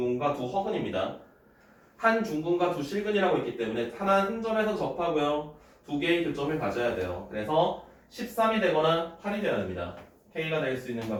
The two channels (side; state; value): both; identical; correlation 1.00